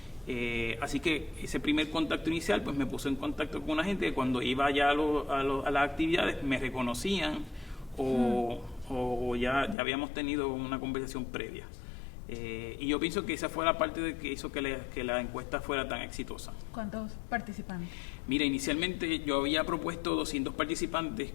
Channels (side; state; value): right; drops out; at 9.8 s